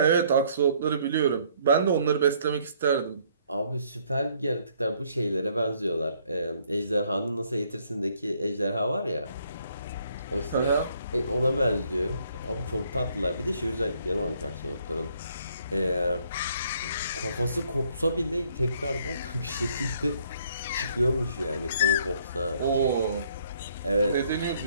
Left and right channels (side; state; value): both; inverted; correlation -0.65